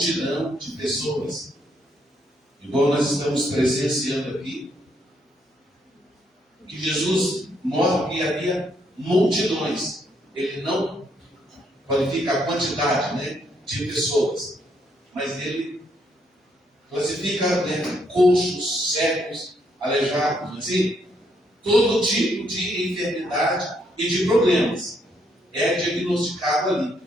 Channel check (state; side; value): normal; both; correlation 0.73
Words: de pessoas, igual nós estamos presenciando aqui, que Jesus mostra que havia multidões. Ele não qualifica a quantidade, de pessoas, mas ele classifica coxos, cegos, aleijados, assim, todo tipo de enfermidade e de problemas. é diagnosticado ali,